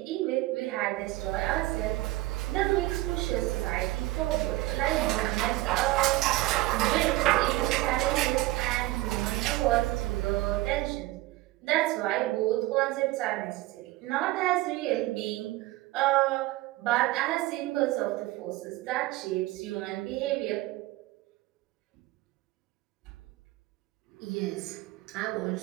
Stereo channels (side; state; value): left; quieter; 18.4 dB